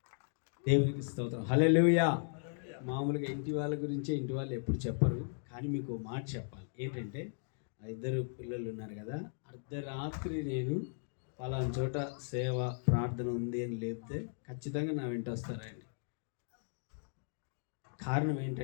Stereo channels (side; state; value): right; silent; digital silence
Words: దేవునికి స్తోత్రం. హల్లెలూయా. మామూలుగా ఇంటి వాళ్ళ గురించే ఇంటి వాళ్ళు ఎప్పుడు చెప్పరు, కానీ మీకు మాట చెప్పాలి. ఏంటంటే ఆ ఇద్దరు పిల్లలు ఉన్నారు కదా, అర్ధరాత్రి నేను పలానా చోట సేవ ప్రార్థన ఉంది అని లేపితే ఖచ్చితంగా నా వెంట వస్తారండి. కారణం